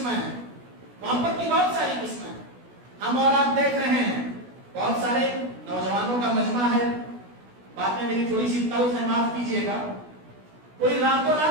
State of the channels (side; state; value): left; late; 16 ms